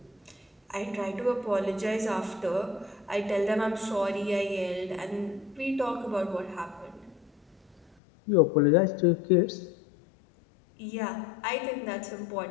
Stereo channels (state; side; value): drops out; right; at 7.9 s